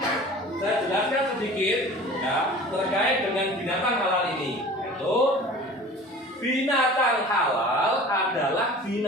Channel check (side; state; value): both; normal; correlation 0.42